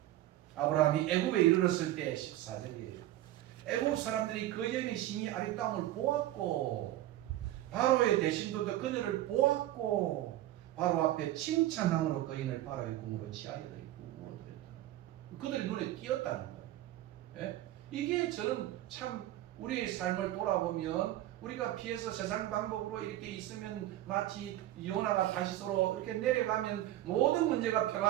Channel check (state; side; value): quieter; left; 14.5 dB